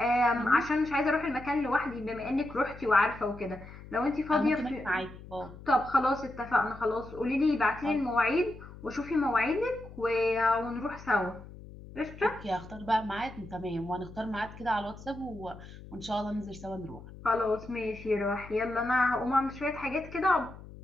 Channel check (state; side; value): noise; left; hum, 16 dB below the sound